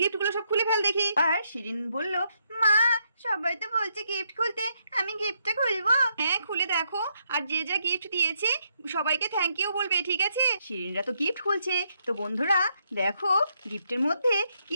সব খুলে ফেল দেখি। আর শিরিন বলল, মা সবাই তো বলছে গিফট খুলতে, আমি গিফটটা খুলবো? হ্যাঁ খুলে দেখো, আর যে যা গিফট দিয়েছে সবাইকে থ্যাংক ইউ বলবে, ঠিক আছে? শিরিনরা তো গিফট খুলছে। তো বন্ধুরা দেখো গিফটের মধ্যে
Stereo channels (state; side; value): inverted; both; correlation -0.76